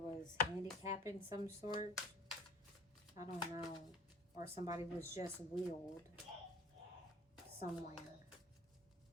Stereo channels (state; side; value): normal; both; correlation 0.45